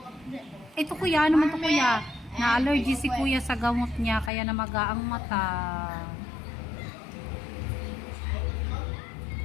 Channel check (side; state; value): right; drops out; at 4.3 s